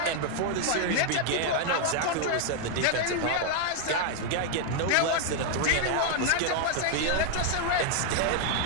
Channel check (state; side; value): different; both; correlation 0.00